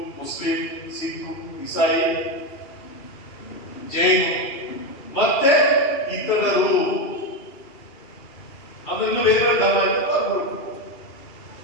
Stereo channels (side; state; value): right; late; 3.0 ms